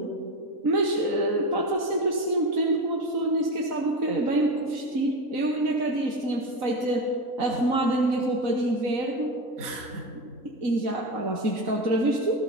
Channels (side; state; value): left; late; 4.0 ms